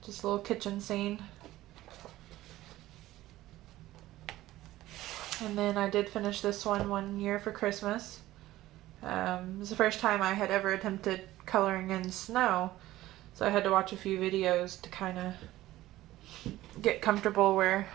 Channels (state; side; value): quieter; left; 15.9 dB